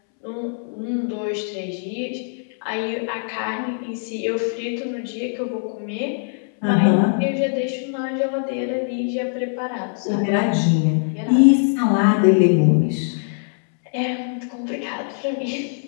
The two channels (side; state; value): right; silent; 64 dB below the other